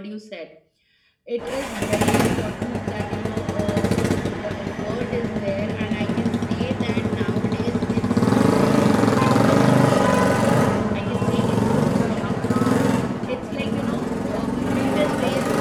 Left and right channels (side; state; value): both; identical; correlation 1.00